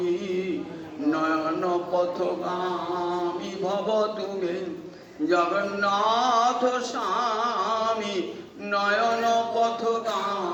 নয়ন পথগামী ভব তুমি। জগন্নাথ স্বামী নয়ন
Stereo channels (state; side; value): identical; both; correlation 1.00